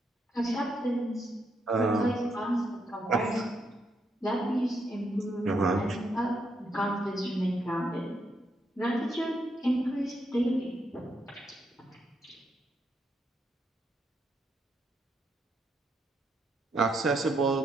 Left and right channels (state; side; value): normal; both; correlation 0.78